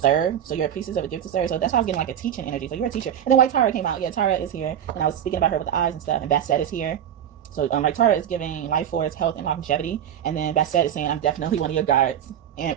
So you're a priestess of a gift to serve. So that's why I was getting like a teaching energy. So you're a teacher. And then White Tara came out. Yeah, Tara is here. And I was speaking about her with the eyes and stuff. And Bastet is here. So like Tara is giving life force, health, and longevity, and then Basset is saying I'm definitely one of your guards,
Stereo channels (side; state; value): left; quieter; 9.9 dB